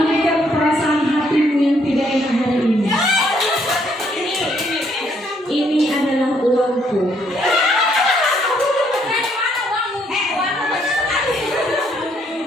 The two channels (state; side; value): normal; both; correlation 0.70